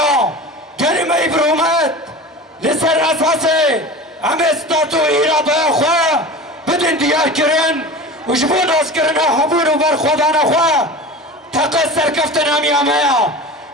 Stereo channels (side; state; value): both; normal; correlation 0.33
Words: کلمه برومت لسر اساسه همه ستاتو ایراده خواه بدن دیار کرن و جبون از کرن حبون و برخودان خواه تقص سرکفتن همی همه